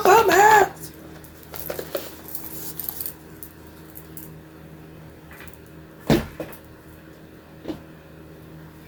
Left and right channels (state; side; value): identical; both; correlation 1.00